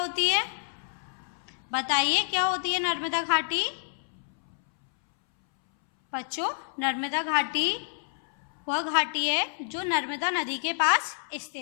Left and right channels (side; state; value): right; silent; 59 dB below the other